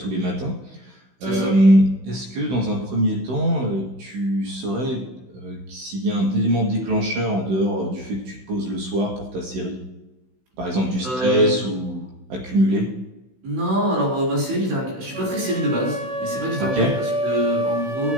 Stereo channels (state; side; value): late; left; 16 ms